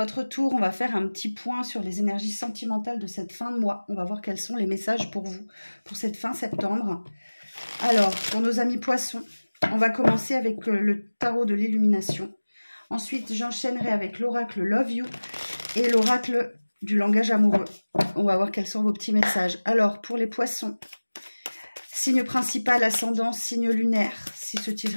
tour. On va faire un petit point sur les énergies sentimentales de cette fin de mois. On va voir quels sont les messages pour vous, pour cette fin septembre. Alors, pour nos amis poissons, on va commencer avec le tarot de l'illumination. Ensuite, j'enchaînerai avec l'oracle Love You et l'oracle du langage amoureux. On va voir quels sont vos petits messages. Alors, pour les poissons, signe principal, ascendant, signe lunaire. Si ce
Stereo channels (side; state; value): both; inverted; correlation -1.00